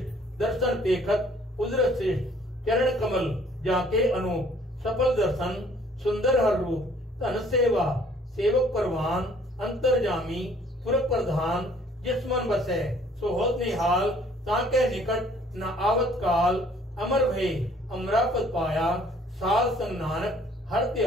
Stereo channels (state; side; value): normal; both; correlation 0.58